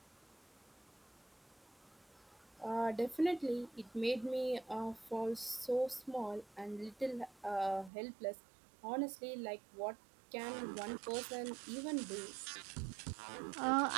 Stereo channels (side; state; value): left; drops out; at 7.9 s